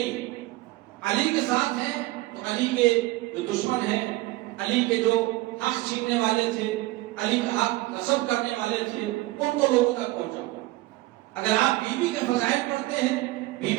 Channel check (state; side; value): quieter; left; 19.0 dB